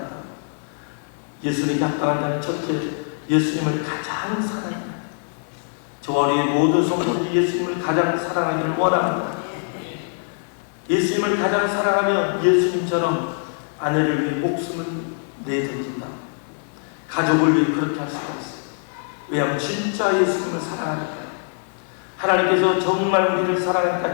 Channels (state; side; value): silent; right; 63 dB below the other